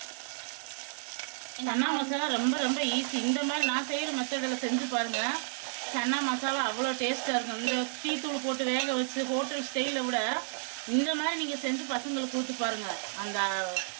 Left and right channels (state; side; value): silent; left; digital silence